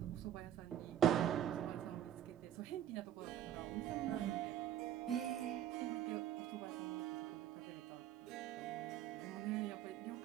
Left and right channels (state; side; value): quieter; left; 10.7 dB